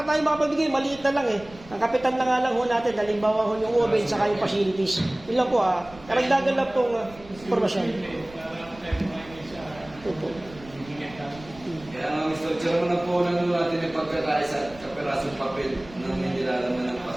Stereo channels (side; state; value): right; noise; rumble, 20 dB below the sound